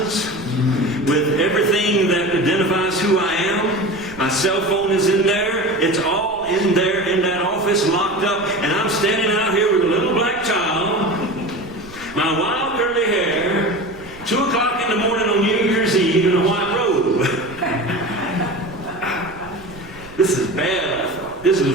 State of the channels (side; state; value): right; noise; rumble, 23 dB below the sound